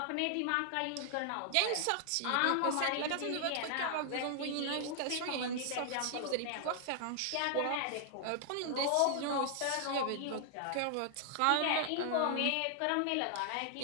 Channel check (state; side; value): different; both; correlation 0.00